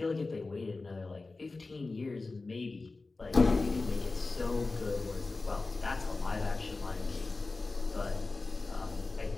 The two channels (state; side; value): quieter; right; 3.6 dB